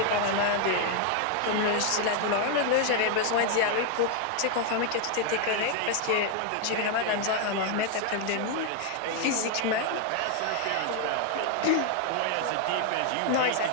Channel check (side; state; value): both; different; correlation 0.00